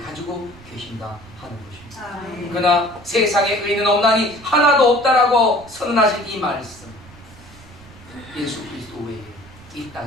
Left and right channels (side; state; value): right; noise; rumble, 21 dB below the sound